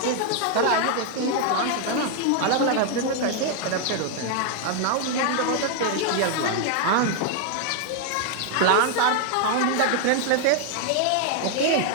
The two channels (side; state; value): both; different; correlation 0.00